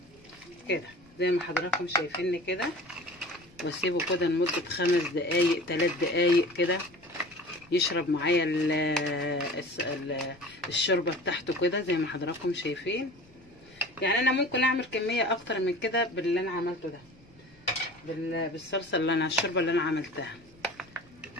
كده زي ما حضراتكم شايفيني كده، واسيبه كده لمده 5 دقايق 3 دقايق كده يشرب معايا الشوربه بتاعته كده زي ما حضراتكم شايفين. يعني انا ممكن اعمل كميه اكتر من كده باللي انا عملته ده، بالصلصه اللي انا الشوربه اللي انا عملتها.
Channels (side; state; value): left; noise; rumble, 28 dB below the sound